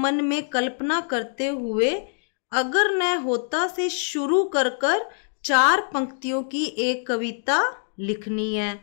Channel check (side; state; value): right; silent; digital silence